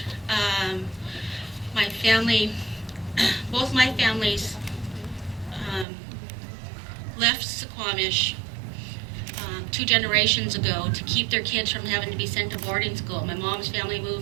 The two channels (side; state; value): left; drops out; at 5.9 s